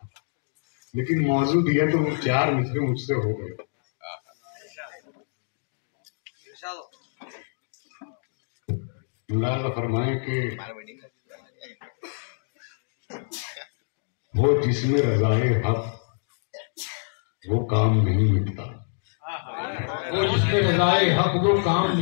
लेकिन मौजू दिया तो वो 4 मिसरे मुझसे हो गए। मुलाज़ा फरमाए कि वो जिसमें रज़ाए हक वो काम नहीं मिटता, वो जिसमें रज़ाए हक वो काम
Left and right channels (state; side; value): silent; right; digital silence